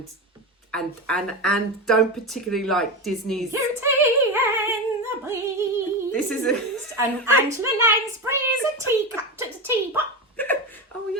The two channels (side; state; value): both; normal; correlation 0.18